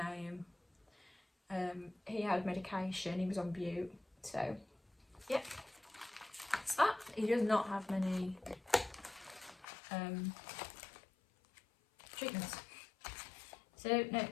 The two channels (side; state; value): right; drops out; at 9.7 s